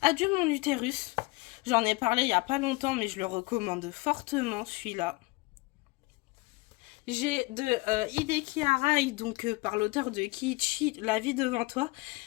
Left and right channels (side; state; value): right; quieter; 24.5 dB